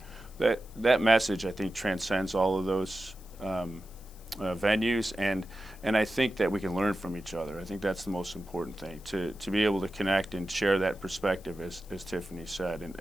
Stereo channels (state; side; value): noise; left; hiss, 24 dB below the sound